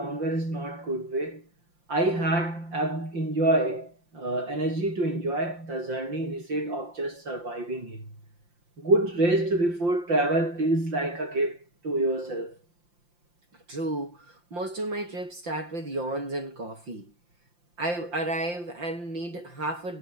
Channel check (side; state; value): left; late; 5.8 ms